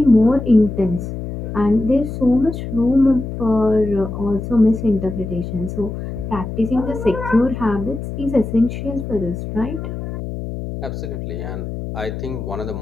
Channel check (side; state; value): left; noise; hum, 6 dB below the sound